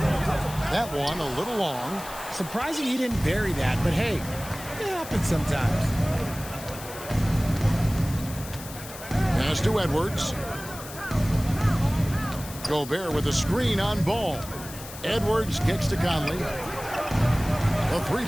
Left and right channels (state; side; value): noise; left; hiss, 14 dB below the sound